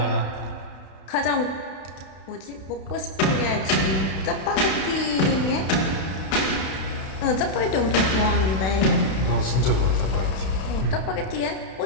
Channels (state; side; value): late; right; 31 ms